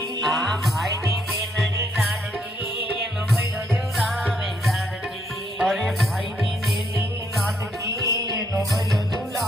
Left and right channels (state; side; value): normal; both; correlation 0.72